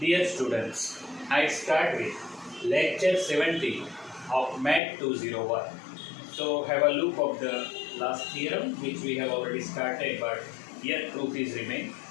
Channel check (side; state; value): right; drops out; at 4.8 s